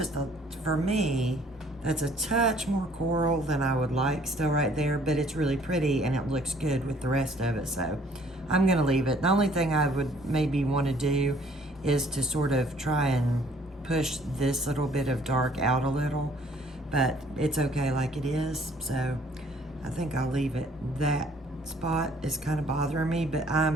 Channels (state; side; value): normal; both; correlation 0.59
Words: for me, that's a touch more coral than I would like still right there, but it's really pretty and it looks good with the rest of it. So I'm gonna leave it. The only thing I would maybe want to do is to sort of try and push this little bit of dark out a little, but it's okay like it is. So I think I'll leave it. That spot is kind of bothering me, but